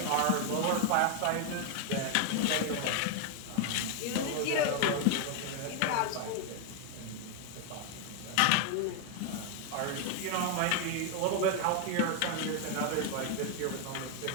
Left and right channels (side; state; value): both; different; correlation 0.01